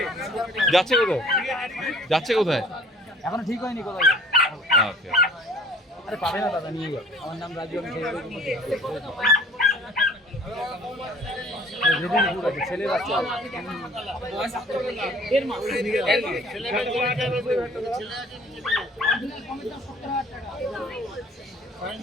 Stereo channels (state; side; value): normal; both; correlation 0.51